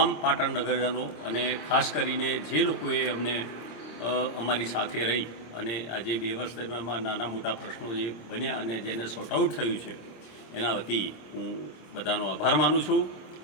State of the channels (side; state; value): right; late; 26 ms